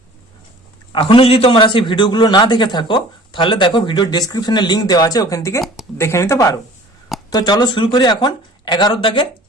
এখনো যদি তোমরা সেই ভিডিওগুলো না দেখে থাকো তাহলে দেখো, ভিডিও ডেসক্রিপশনে লিংক দেওয়া আছে, ওখান থেকে দেখে নিতে পারো। তো চলো শুরু করি এখন 11-এর দাগের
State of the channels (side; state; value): both; normal; correlation 0.47